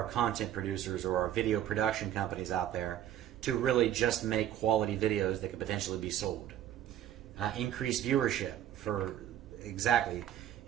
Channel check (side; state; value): left; quieter; 11.5 dB